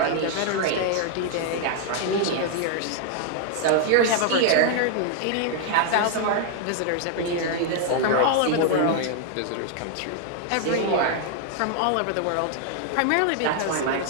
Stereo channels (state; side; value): different; both; correlation 0.00